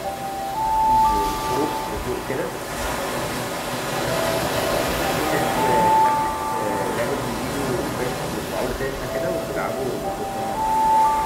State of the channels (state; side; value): identical; both; correlation 1.00